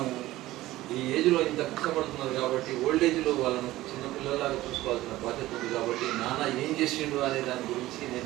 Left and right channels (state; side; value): quieter; left; 16.6 dB